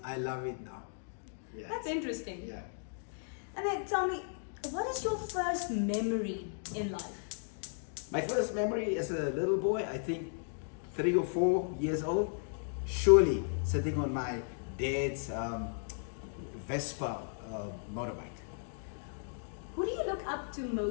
I love it now. Yeah. That's interesting. Yeah. And then tell me, what is your first memory in life? My first memory as a little boy, I think 3 or 4 years old, surely sitting on my dad's Vespa motorbike. Who do you look up to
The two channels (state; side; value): silent; right; digital silence